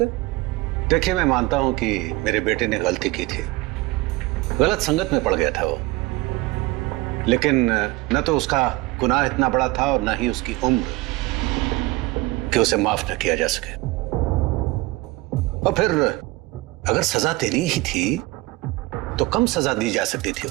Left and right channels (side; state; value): left; quieter; 20.9 dB